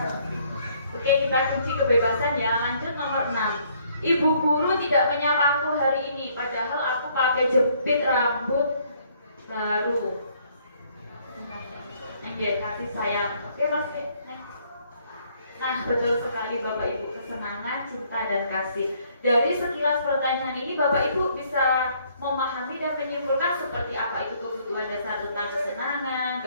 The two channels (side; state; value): both; inverted; correlation -0.65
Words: Oke, kita kunci kebebasan ya. Lanjut nomor 6. Ibu guru tidak menyapaku hari ini, padahal aku pakai jepit rambut baru. Kasih sayang. Oke, masih. Nah, betul sekali Bapak Ibu, kesenangan, cinta, dan kasih. Dari sekilas pertanyaan ini Bapak Ibu bisa memahami dan menyimpulkan seperti apa itu kebutuhan dasar tentang kesenangan,